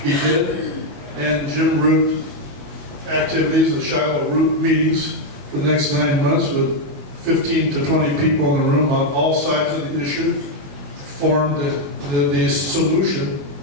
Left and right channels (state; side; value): late; left; 21 ms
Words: He did. And Jim Root activities, the Shiloh Root meetings for the next 9 months with 15 to 20 people in the room on all sides of the issue formed the solution